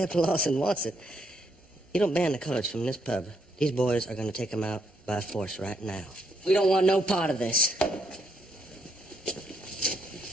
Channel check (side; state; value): both; normal; correlation 0.75